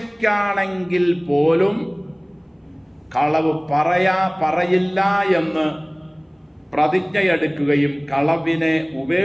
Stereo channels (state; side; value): identical; both; correlation 1.00